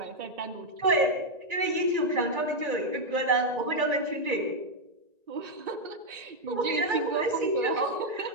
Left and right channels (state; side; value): late; left; 1.9 ms